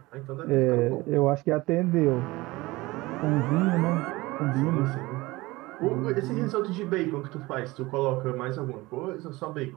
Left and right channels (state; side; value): quieter; left; 20.9 dB